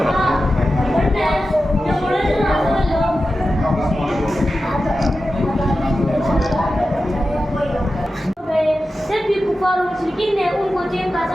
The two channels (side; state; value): both; normal; correlation 0.93